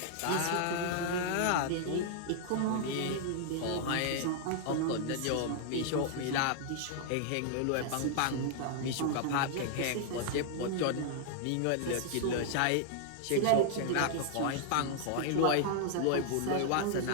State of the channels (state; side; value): different; both; correlation -0.01